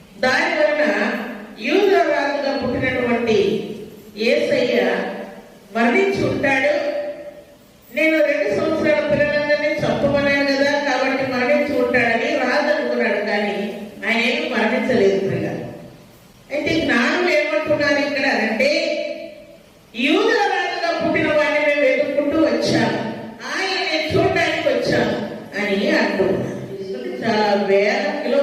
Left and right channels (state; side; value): identical; both; correlation 1.00